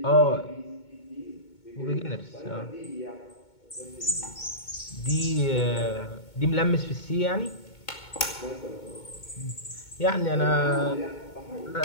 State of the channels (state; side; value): late; right; 2.2 ms